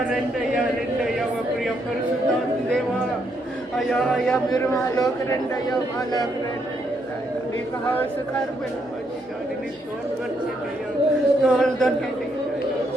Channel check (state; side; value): normal; both; correlation 0.76